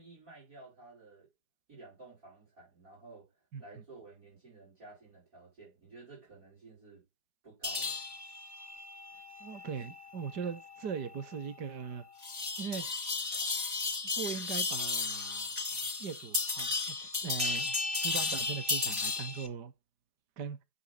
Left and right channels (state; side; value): late; left; 4.8 ms